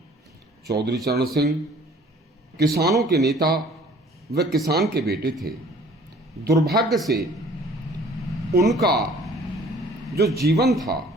चौधरी चरण सिंह किसानों के नेता व किसान के बेटे थे। दुर्भाग्य से उनका जो जीवन था,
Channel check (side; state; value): both; normal; correlation 0.53